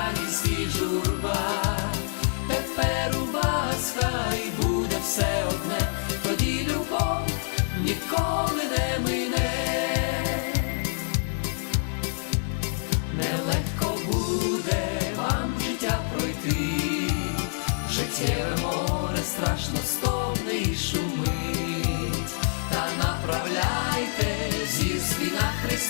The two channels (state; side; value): silent; right; digital silence